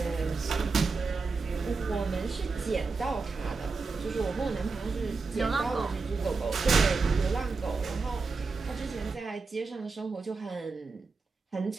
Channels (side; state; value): left; quieter; 4.3 dB